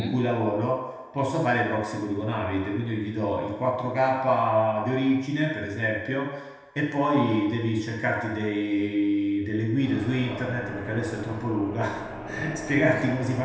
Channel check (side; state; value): both; identical; correlation 1.00